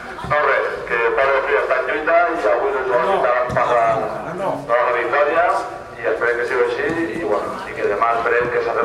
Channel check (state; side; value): identical; both; correlation 1.00